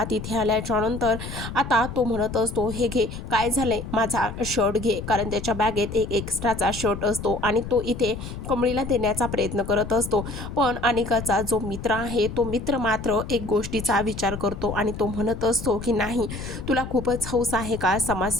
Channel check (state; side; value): noise; left; rumble, 8 dB below the sound